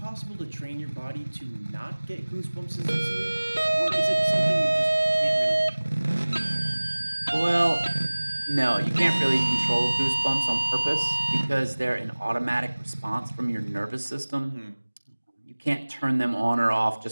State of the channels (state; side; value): inverted; both; correlation -1.00